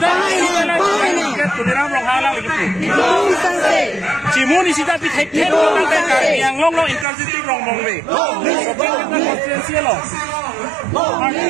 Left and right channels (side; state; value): left; drops out; at 7.1 s